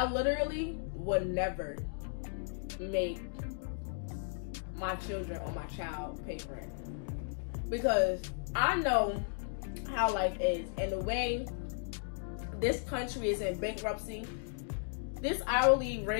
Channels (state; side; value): silent; right; digital silence